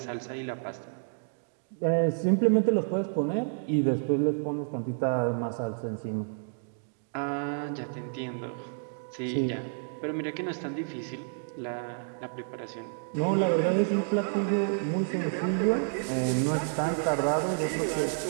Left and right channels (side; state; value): left; silent; digital silence